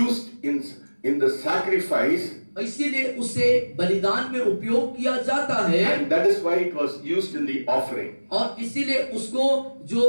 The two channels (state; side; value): inverted; both; correlation -1.00